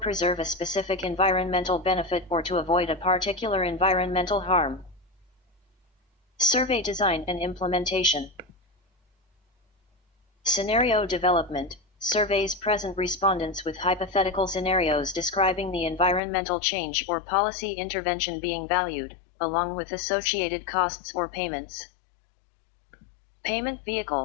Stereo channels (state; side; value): drops out; right; at 16.2 s